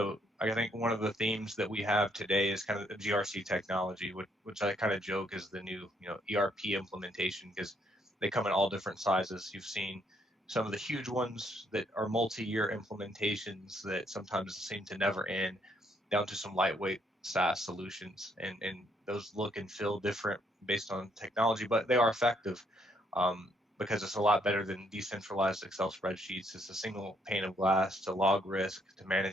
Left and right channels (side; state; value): both; normal; correlation 0.71